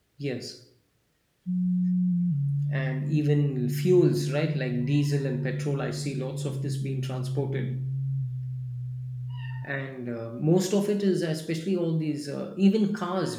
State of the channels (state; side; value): identical; both; correlation 1.00